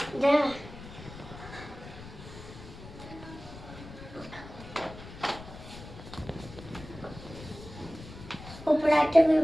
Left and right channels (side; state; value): left; noise; rumble, 15 dB below the sound